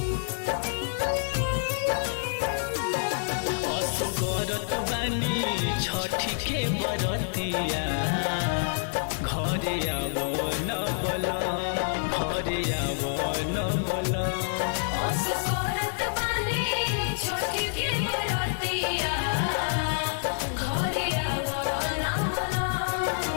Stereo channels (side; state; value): right; silent; 60 dB below the other